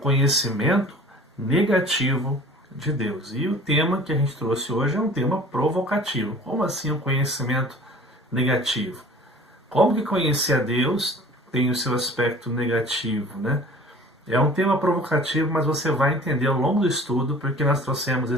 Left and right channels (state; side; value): normal; both; correlation 0.46